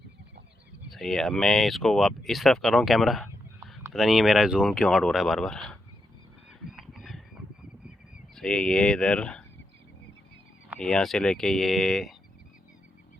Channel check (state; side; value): normal; both; correlation 0.84